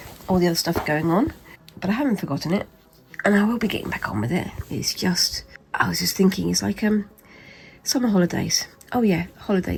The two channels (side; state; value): both; identical; correlation 1.00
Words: all the other stuff going on, but I haven't forgotten it, and I will be getting back on with it. It's just, I was just thinking, it's like summer holidays. Oh yeah,